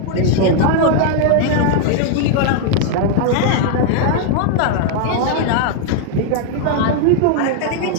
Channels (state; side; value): different; both; correlation 0.00